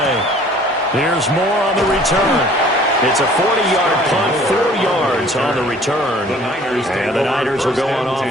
Here's more on the return. It's a 40-yard punt, 4 yards on the return. And the Niners will go on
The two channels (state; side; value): normal; both; correlation 0.53